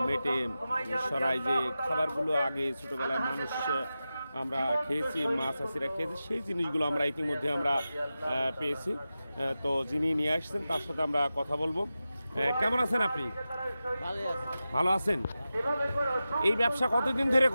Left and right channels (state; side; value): inverted; both; correlation -0.93